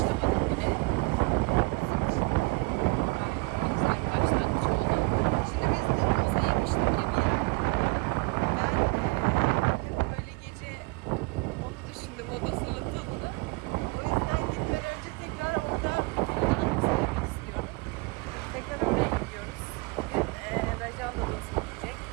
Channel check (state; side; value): quieter; left; 26.5 dB